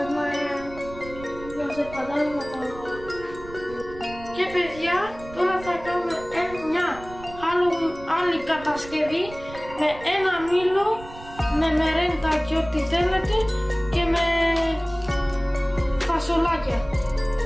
Και παιδιά τώρα θα κάνουμε μια άλλη κατασκευή με ένα μήλο, με μερέντα και ό,τι θέλετε και με φασολάκια.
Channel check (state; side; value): noise; right; rumble, 16 dB below the sound